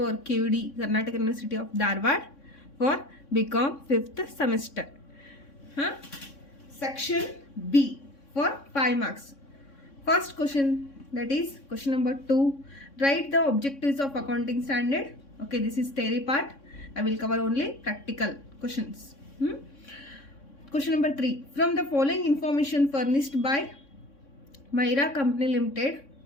QD Karnataka University of Dharwad for Bcom 5th semester. Huh? Section B for 5 marks. First question, that is question number 2. Write the objectives of accounting standard. Okay, this is theory part. I will cover only practical questions. Question number 3. From the following information furnished by Myra Company Limited,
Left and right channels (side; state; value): right; late; 3.6 ms